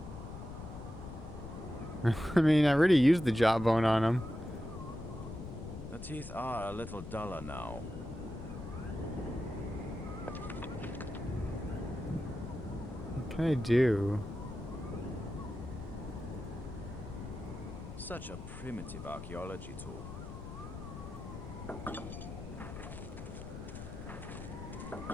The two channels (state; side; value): noise; left; rumble, 10 dB below the sound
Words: I mean, I already used the jawbone on him. The teeth are a little duller now. What can I do? Such a primitive archaeology tool.